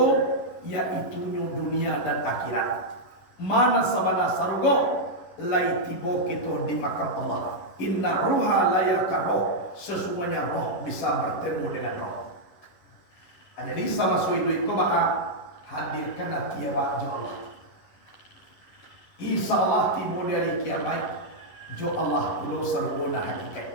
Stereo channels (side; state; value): right; late; 11 ms